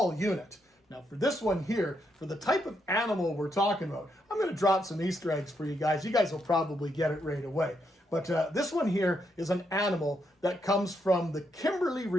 unit. Now for this one here, for the type of animal we're talking about, I'm going to drop some Easter eggs for you guys. You guys will probably get it right away. But this one here is an animal that comes from the Kimberley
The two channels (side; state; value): both; normal; correlation 0.79